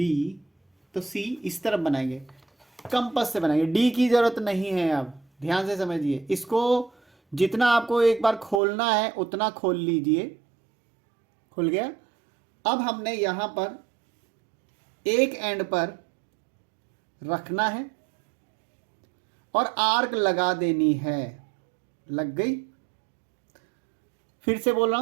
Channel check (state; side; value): drops out; left; at 8.6 s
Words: तो सी इस तरफ बनाएंगे, कंपास से बनाएंगे। डी की जरूरत नहीं है। अब ध्यान से समझिए, इसको जितना आपको एक बार खोलना है उतना खोल लीजिए। खुल गया। अब हमने यहां पर एक एंड पर रखना है और आर्क लगा देनी है। लग गई। फिर से बोल रहा